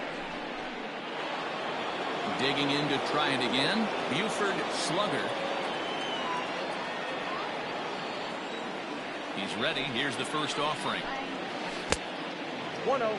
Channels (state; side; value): identical; both; correlation 1.00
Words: Digging in to try it again, Buford Slugger. He's ready. Here's the first offering. 1-0.